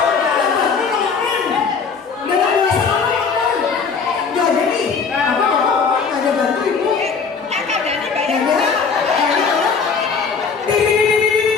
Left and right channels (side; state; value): right; quieter; 5.5 dB